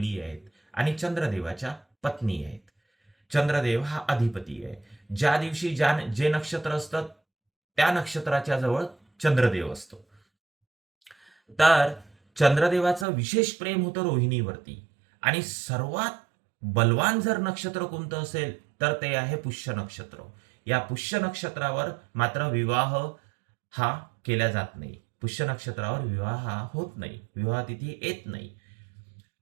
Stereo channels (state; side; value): drops out; left; at 13.1 s